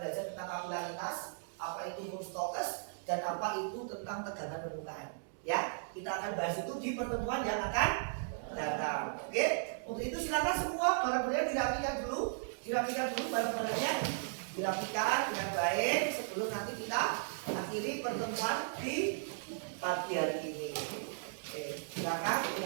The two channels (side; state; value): left; silent; digital silence